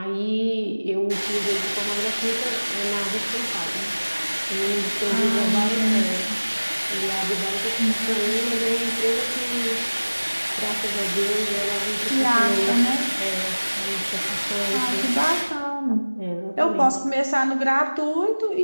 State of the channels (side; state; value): both; inverted; correlation -1.00